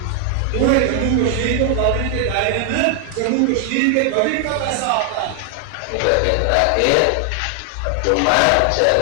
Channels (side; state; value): both; different; correlation 0.00